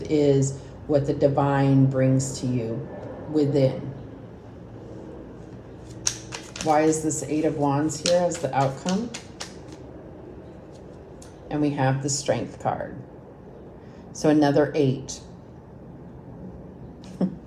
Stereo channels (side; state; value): both; identical; correlation 1.00